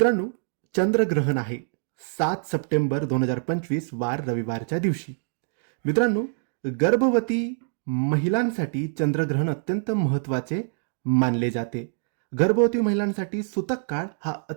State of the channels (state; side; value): silent; left; digital silence